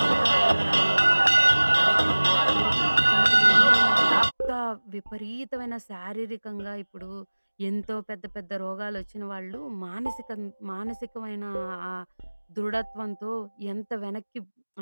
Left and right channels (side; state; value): both; inverted; correlation -1.00